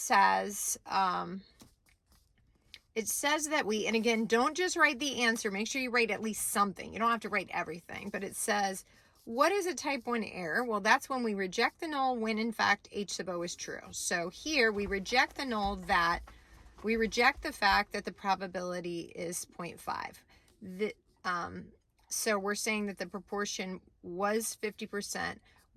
that we, and again, don't just write the answer, make sure you write at least something. You don't have to write everything, but it says, what is a type 1 error? Well, that's when we reject the null when in fact H sub O is true. So here we reject the null that, we reject the fact that the probability is 0.5. So we're saying that the proportion was 50%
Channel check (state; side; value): identical; both; correlation 1.00